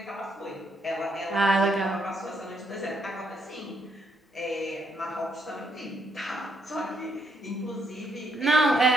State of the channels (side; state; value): both; normal; correlation 0.75